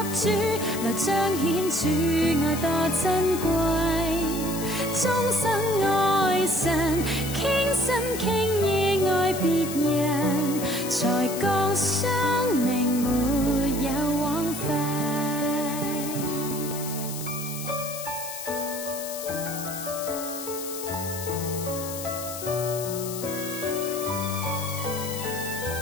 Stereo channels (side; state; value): left; noise; hiss, 9 dB below the sound